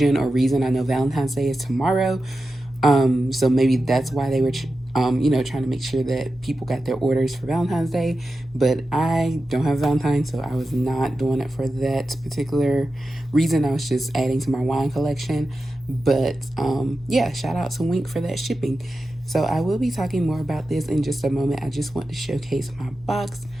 or reason. I know Valentine's Day is tomorrow, so maybe that's why they were trying to make sure that people got their orders for Valentine's Day. But I don't have Valentine's, so I was not doing it for that particular reason. I was just adding to my wine collection. But yeah, shout out to Winc for that shipping. So I will be talking more about this in just a moment. I just want to showcase my box,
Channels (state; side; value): normal; both; correlation 0.92